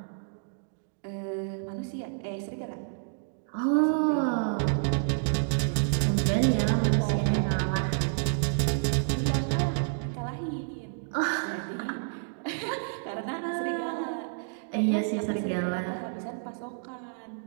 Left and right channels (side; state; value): left; silent; digital silence